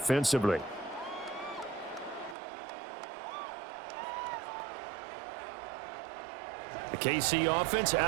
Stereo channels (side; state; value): left; drops out; at 2.4 s